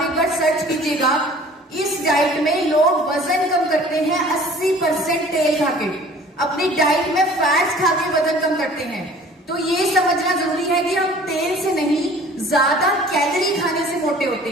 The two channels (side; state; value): both; normal; correlation 0.49